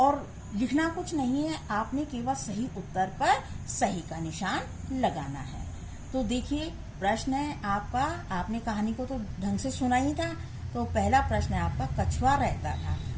लिखना कुछ नहीं है। आपने केवल सही उत्तर पर सही का निशान लगाना है। तो देखिए प्रश्न है आपका, आपने कहानी को तो ढंग से सुना ही था। तो पहला प्रश्न है आपका, कछुआ रहता था।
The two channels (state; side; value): identical; both; correlation 1.00